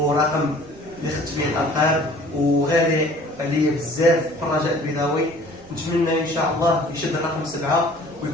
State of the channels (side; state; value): right; noise; rumble, 24 dB below the sound